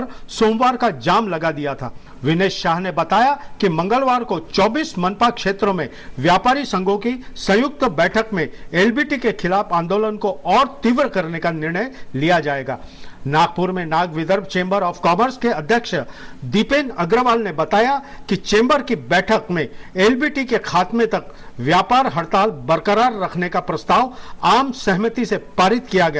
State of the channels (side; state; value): both; identical; correlation 1.00